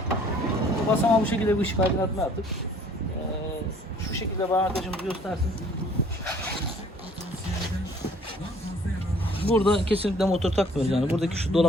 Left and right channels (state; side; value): normal; both; correlation 0.56